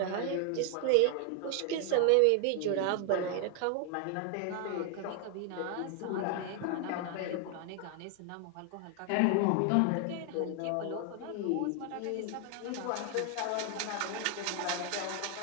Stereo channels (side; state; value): both; different; correlation 0.00